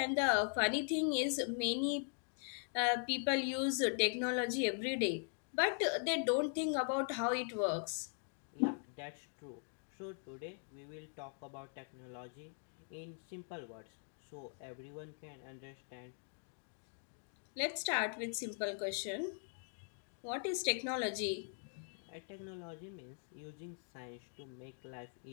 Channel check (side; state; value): right; silent; 50 dB below the other